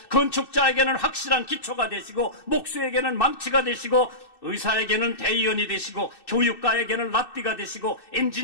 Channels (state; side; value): late; right; 2.6 ms